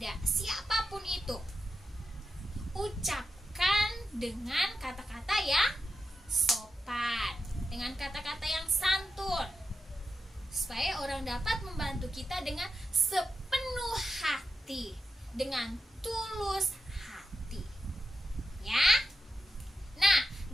siapapun itu, ucapkan dengan kata-kata yang sopan, dengan kata-kata yang santun, supaya orang dapat membantu kita dengan sepenuh hati, dengan tulus hati. Ya. Nah,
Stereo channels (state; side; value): normal; both; correlation 0.89